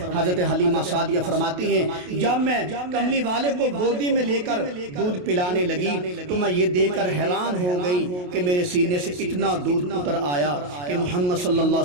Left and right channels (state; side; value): late; left; 28 ms